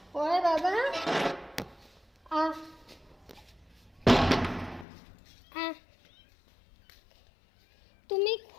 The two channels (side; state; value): right; drops out; at 4.9 s